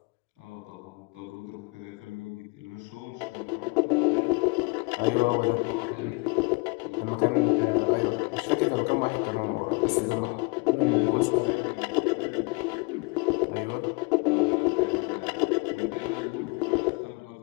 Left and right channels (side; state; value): right; quieter; 28.7 dB